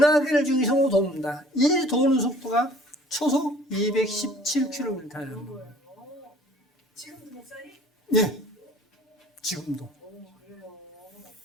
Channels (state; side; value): normal; both; correlation 0.51